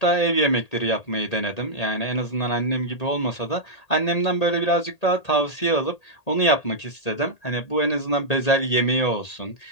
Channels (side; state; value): right; late; 1.8 ms